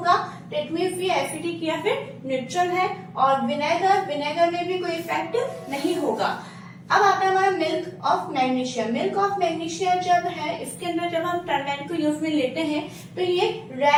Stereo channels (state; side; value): identical; both; correlation 1.00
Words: दैट मीन्स ये एसिडिक या फिर न्यूट्रल है। और विनेगर, विनेगर में भी कोई इफेक्ट नहीं होगा। अब आता है हमारा milk of magnesia. Milk of magnesia जब है इसके अंदर जब हम टर्मेरिक को यूज में लेते हैं तो ये